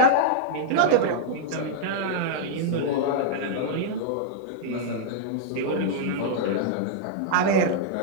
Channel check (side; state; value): both; different; correlation -0.02